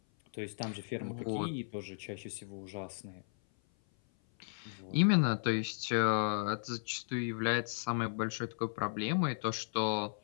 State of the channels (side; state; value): right; silent; 54 dB below the other